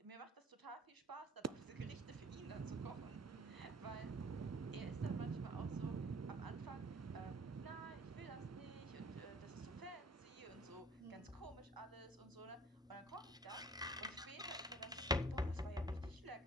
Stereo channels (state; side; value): normal; both; correlation 0.53